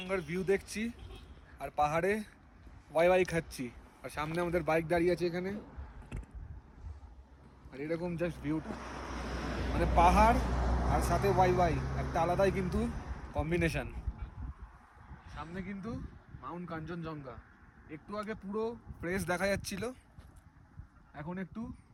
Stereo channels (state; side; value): identical; both; correlation 1.00